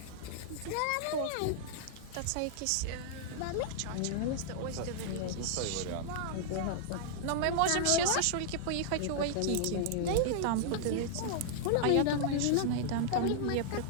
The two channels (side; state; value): both; different; correlation -0.01